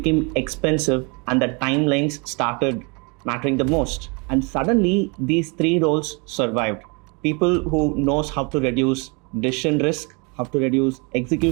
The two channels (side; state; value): left; quieter; 31.5 dB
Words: expensive, and the timelines started mattering the most. And suddenly these three roles survived: people who knows how to reduce decision risk, how to reduce